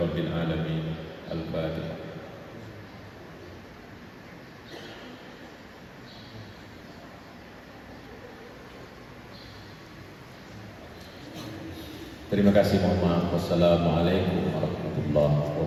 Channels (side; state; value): both; identical; correlation 1.00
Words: رب العالمين. الفاتحة. Terima kasih, mohon maaf. Wassalamualaikum warahmatullahi